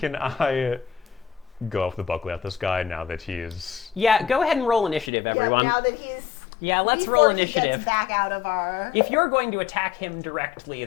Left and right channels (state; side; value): drops out; right; at 5.1 s